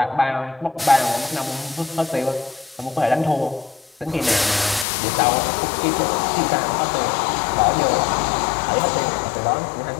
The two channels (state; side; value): drops out; right; at 4.9 s